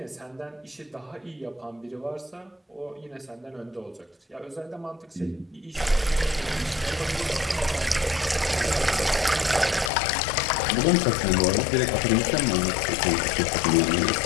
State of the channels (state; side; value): drops out; right; at 9.9 s